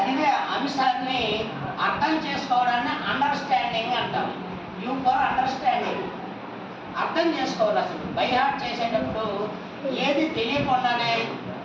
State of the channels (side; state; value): both; identical; correlation 1.00